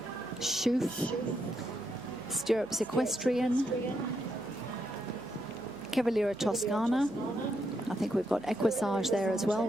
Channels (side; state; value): right; noise; hum, 24 dB below the sound